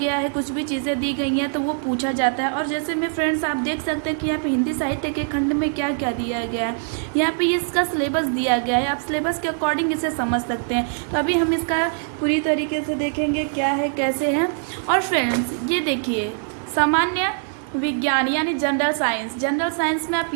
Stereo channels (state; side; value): silent; left; 64 dB below the other